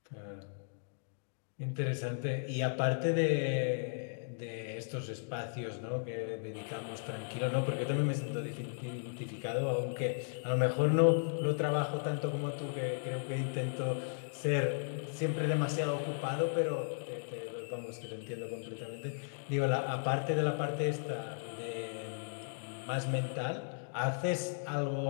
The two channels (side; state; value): right; silent; digital silence